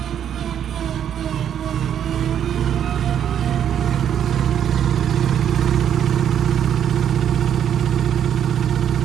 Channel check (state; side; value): quieter; left; 9.3 dB